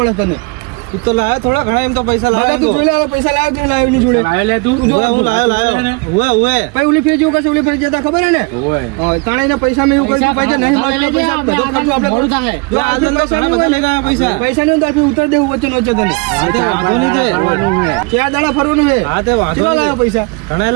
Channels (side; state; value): left; quieter; 28.5 dB